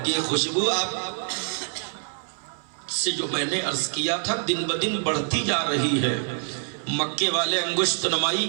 کہ یہ خوشبو آپ سے جو میں نے عرض کیا تھا دن بدن بڑھتی جا رہی ہے. مکے والے انگشت نمائی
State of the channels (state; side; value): silent; left; 61 dB below the other